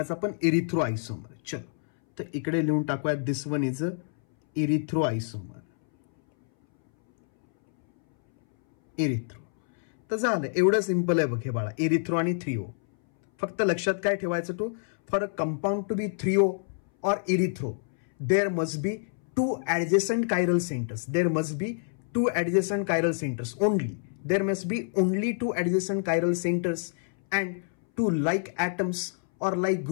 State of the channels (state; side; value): silent; right; 60 dB below the other